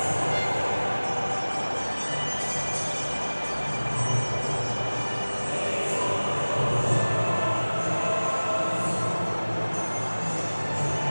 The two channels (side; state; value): both; inverted; correlation -1.00